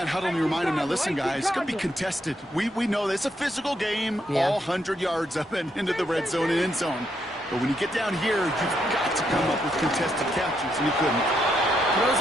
huddle and you remind him, now listen, guys, it's going to be contested. We know this. It's a physical game, all 100 yards up and into the red zone and end zone. But when you get down here, you've got to come up with contested catches, and you couldn't. Throws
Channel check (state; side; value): normal; both; correlation 0.78